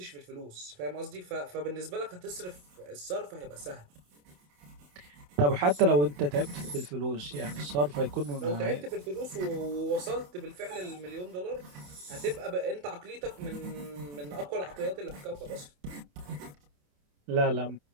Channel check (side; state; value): left; late; 28 ms